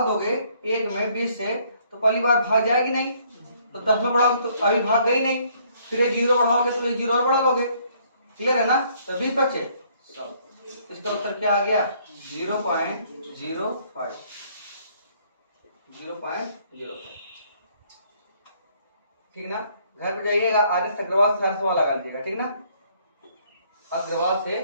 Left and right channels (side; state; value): both; inverted; correlation -0.64